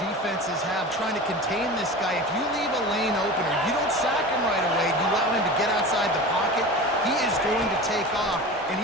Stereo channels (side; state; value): both; normal; correlation 0.33